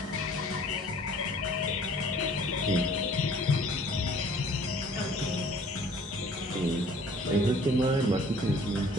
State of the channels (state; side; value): normal; both; correlation 0.53